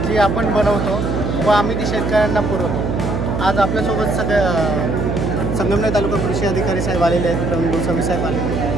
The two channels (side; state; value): right; noise; hum, 2 dB below the sound